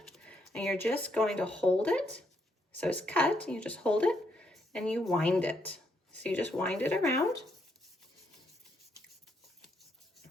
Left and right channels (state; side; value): normal; both; correlation 0.75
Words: and you're just going to hold it. So it's cut, you just hold it and you wind it. So you just wind it around